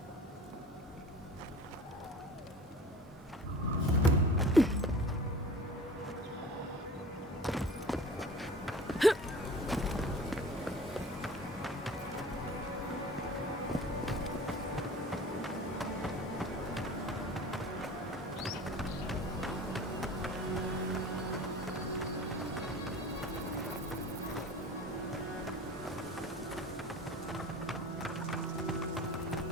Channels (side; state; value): both; normal; correlation 0.41